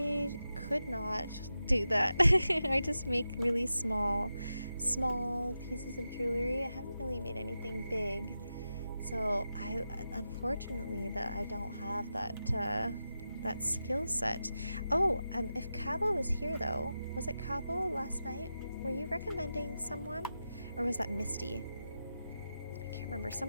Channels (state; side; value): inverted; both; correlation -0.90